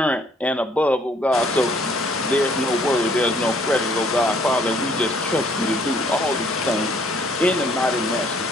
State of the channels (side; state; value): both; normal; correlation 0.62